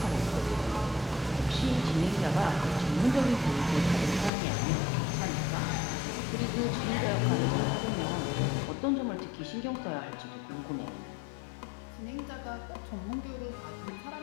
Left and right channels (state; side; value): drops out; right; at 4.3 s